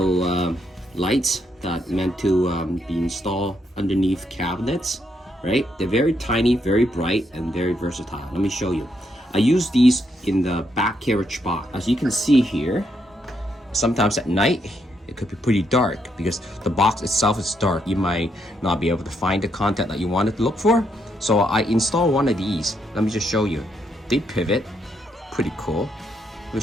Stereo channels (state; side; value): normal; both; correlation 0.77